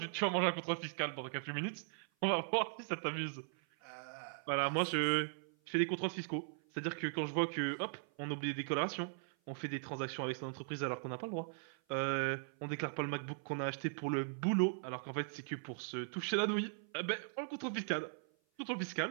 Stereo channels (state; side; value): silent; left; 52 dB below the other